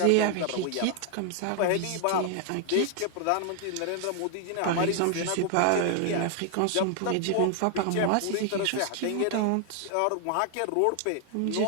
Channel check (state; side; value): different; both; correlation 0.00